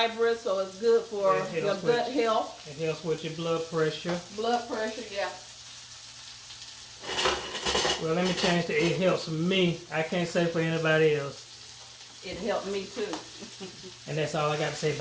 so it's good for your gut health. It helps with your blood pressure. Blood pressure, yeah. Well, let me change to it helps me. I can't say for anybody else. It helped me too. And that's all I got to say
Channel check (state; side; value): identical; both; correlation 1.00